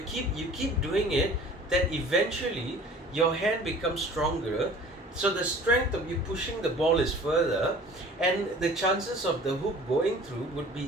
keep doing it, that eventually your hand becomes stronger, so the strength of you pushing the ball is further, and the chances of the hoop going through would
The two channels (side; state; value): both; normal; correlation 0.46